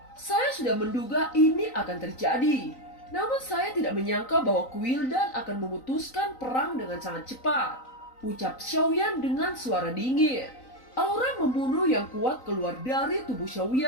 "Saya sudah menduga ini akan terjadi. Namun saya tidak menyangka bahwa Quildan akan memutuskan perang dengan sangat cepat," ucap Xiaoyan dengan suara dingin. Aura membunuh yang kuat keluar dari tubuh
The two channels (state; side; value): late; right; 3.9 ms